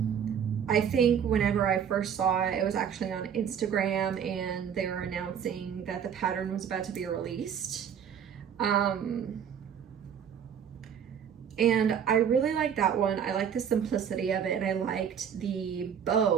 I think whenever I first saw it, it was actually on Instagram and they were announcing that the pattern was about to be released. And I really liked that one. I liked the simplicity of it, and I liked the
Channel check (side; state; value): left; quieter; 8.2 dB